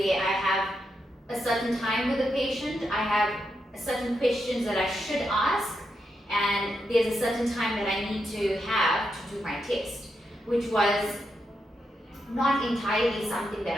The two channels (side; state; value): both; normal; correlation 0.84